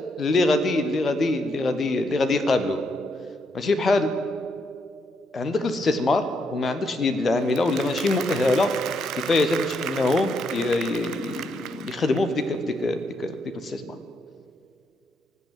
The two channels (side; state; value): both; normal; correlation 0.77